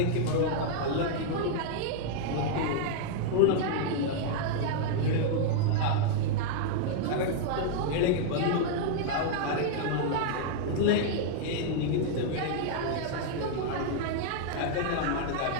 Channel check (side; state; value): both; different; correlation -0.01